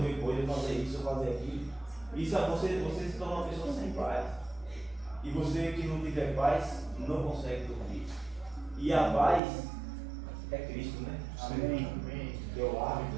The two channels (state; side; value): drops out; left; at 9.4 s